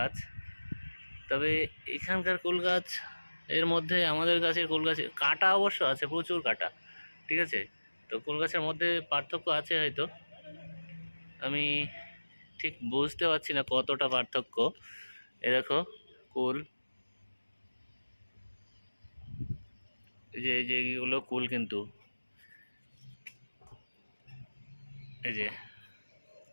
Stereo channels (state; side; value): inverted; both; correlation -1.00